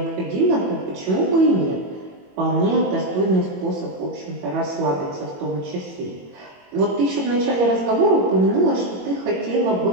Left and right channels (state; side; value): late; left; 21 ms